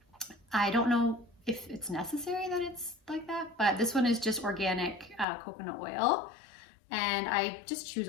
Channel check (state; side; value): drops out; right; at 5.2 s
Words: I don't know if it's necessary that it's like that, but this one is just organic coconut oil. And I just choose